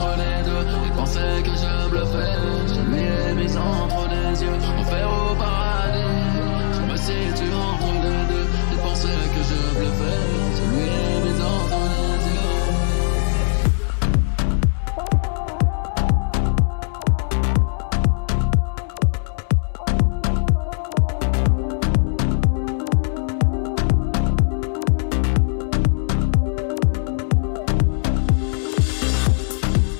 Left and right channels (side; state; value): right; silent; digital silence